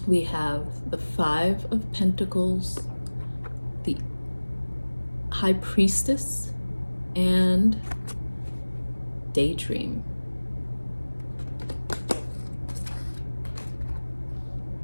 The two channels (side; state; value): both; inverted; correlation -1.00